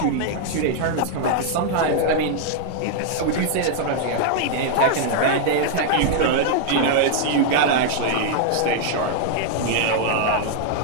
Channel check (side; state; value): both; different; correlation -0.01